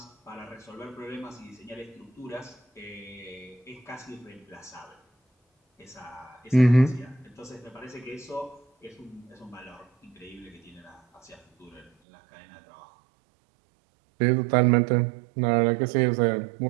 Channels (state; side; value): drops out; left; at 11.9 s